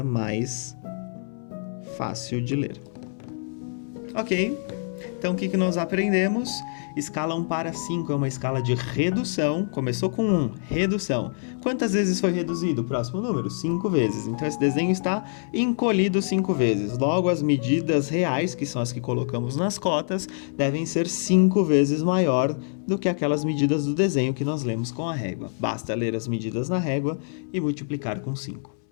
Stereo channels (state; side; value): silent; right; 61 dB below the other